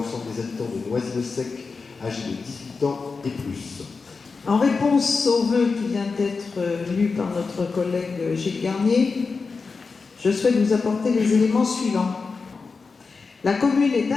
des habitants de Noisy-le-Sec âgés de 18 ans et plus. En réponse au vœu qui vient d'être lu par notre collègue Gilles Garnier, je souhaite vous apporter les éléments suivants. La commune est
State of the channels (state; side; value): quieter; right; 4.6 dB